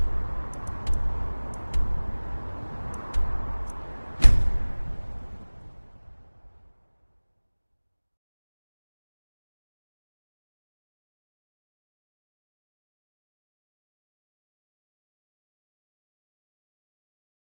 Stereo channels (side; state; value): both; inverted; correlation -1.00